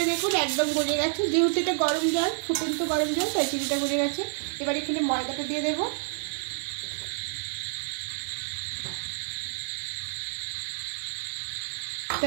দেখুন একদম গলে গেছে, যেহেতু এটা গরম জল, ফুটন্ত গরম জল, তাই চিনিটা গলে গেছে। এবার এখানে ময়দাটা দিয়ে দেবো।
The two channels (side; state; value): left; silent; digital silence